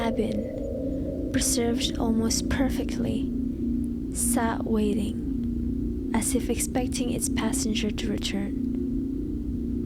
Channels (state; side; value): identical; both; correlation 1.00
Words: preserved almost perfectly, sat waiting, as if expecting its passenger to return.